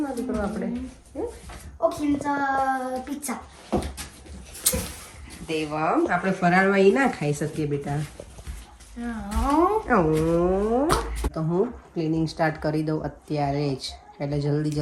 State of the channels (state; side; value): identical; both; correlation 1.00